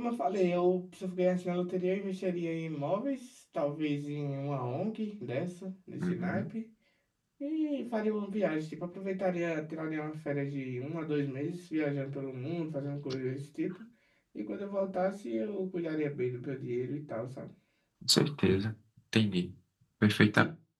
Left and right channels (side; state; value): both; identical; correlation 1.00